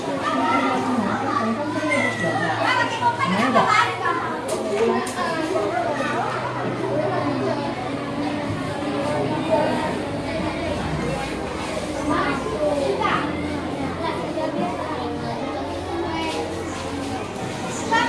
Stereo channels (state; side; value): identical; both; correlation 1.00